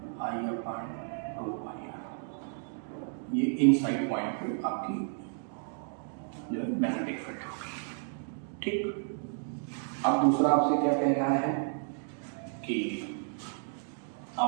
I अपॉन 2 पाई r। ये इनसाइड पॉइंट पे आपकी जो है मैग्नेटिक फील्ड होगी। ठीक, अब दूसरा आपसे क्या कह रहा है कि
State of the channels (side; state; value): left; silent; 56 dB below the other